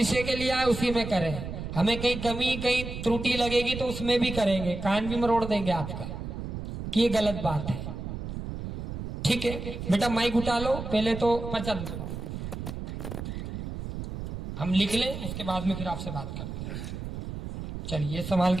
के लिए आए उसी में करें। हमें कहीं कमी कहीं त्रुटि लगेगी तो उसमें भी करेंगे, कान भी मरोड़ देंगे आपका कि ये गलत बात है। ठीक है बेटा, माइक उठा लो। पहले तो पर्चा हम लिख लें, उसके बाद में फिर आपसे बात करते हैं। चलिए ये संभाल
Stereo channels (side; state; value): right; noise; rumble, 7 dB below the sound